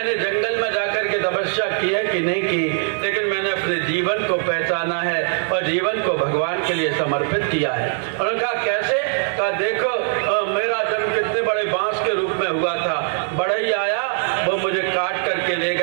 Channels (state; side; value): silent; left; 56 dB below the other